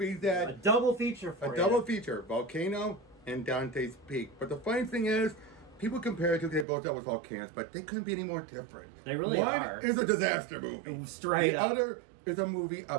that A double feature for a you. double feature, Volcano and Dante's Peak. But the funny thing is, people compare it to they both dealt with volcanoes, but they couldn't be any more different. They really One are. is a disaster movie. Straight the up. other is a movie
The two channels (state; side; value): drops out; left; at 6.7 s